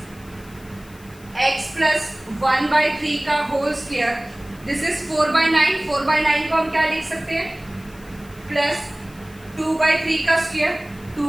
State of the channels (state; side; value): noise; left; hiss, 24 dB below the sound